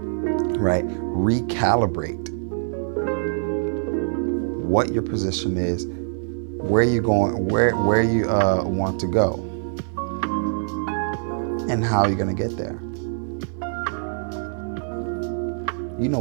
right? Recalibrate what your position is, where you're going, where you want to go, and how you're going to get there. You know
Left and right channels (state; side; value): silent; left; digital silence